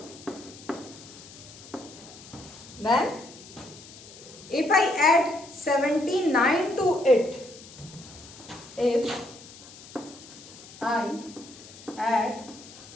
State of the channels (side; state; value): left; noise; hiss, 18 dB below the sound